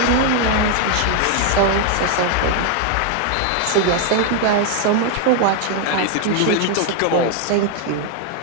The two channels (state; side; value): different; both; correlation 0.00